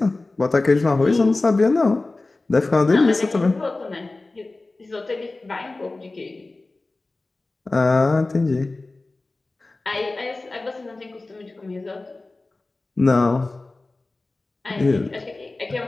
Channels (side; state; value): right; quieter; 3.2 dB